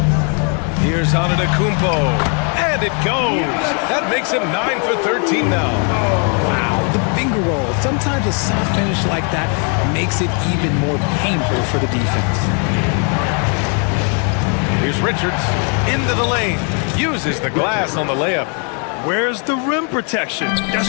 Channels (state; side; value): quieter; right; 39.8 dB